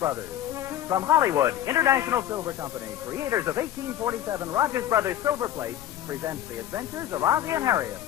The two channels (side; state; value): right; quieter; 11.8 dB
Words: From Hollywood, International Silver Company, creators of 1847 Rogers Brothers Silver Plate, presents The Adventures of Ozzie and Harriet,